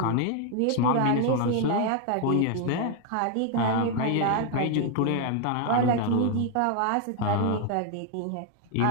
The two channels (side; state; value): both; different; correlation 0.00